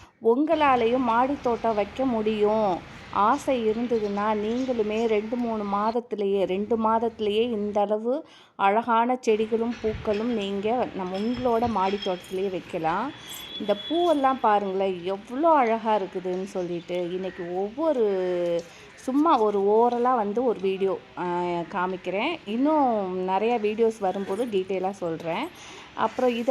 உங்களாலேயும் மாடி தோட்டம் வைக்க முடியும், ஆசை இருந்ததுன்னா நீங்களுமே 2 மாதத்துலேயே இந்த அளவு அழகான செடிகளும் பூக்களும் நீங்கள் உங்களோட மாடி தோட்டத்திலேயே வைக்கலாம். இந்த பூவெல்லாம் பாருங்களேன் எவ்வளோ அழகாக இருக்குதுன்னு சொல்லிட்டு இன்றைக்கி சும்மா ஒரு ஓரலாக வந்து ஒரு வீடியோ காமிக்கிறேன். இன்னும் நிறையா வீடியோஸ் வரும்போது டீட்டெயிலாக சொல்கிறேன். அப்புறம் இது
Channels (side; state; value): both; identical; correlation 1.00